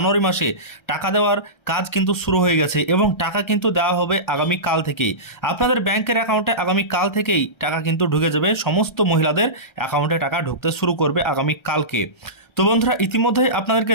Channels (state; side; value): late; right; 1.3 ms